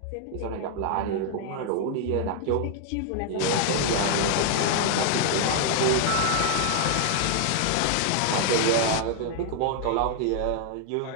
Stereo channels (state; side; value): different; both; correlation 0.00